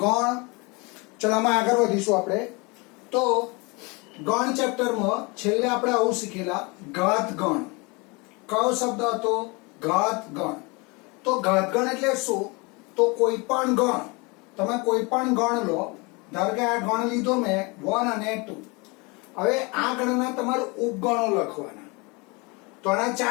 गण चलो आम आगे वधीशुं आपणे तो गण चैप्टर में छेल्ले आपणे आवुं शीखेला घात गण कयो शब्द हतो घात गण तो घात गण एटले शुं तो कोई पण गण तमे कोई पण गण लो धारो के आ गण लीधो मैं 1 અને 2 हवे आ गणना तमारे उपगणो लखवाना तो आना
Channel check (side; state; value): right; quieter; 28.1 dB